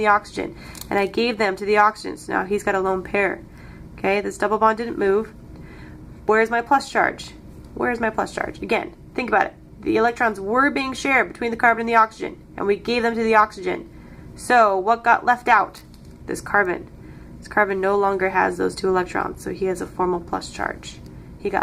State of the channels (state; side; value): identical; both; correlation 1.00